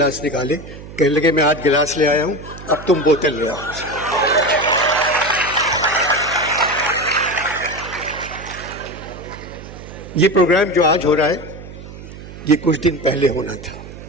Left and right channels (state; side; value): noise; right; hum, 14 dB below the sound